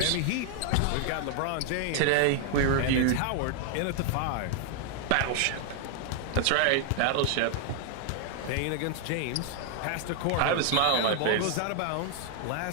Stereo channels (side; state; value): both; different; correlation 0.00